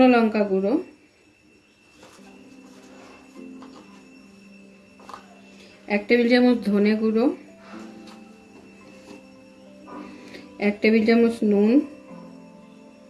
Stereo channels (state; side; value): identical; both; correlation 1.00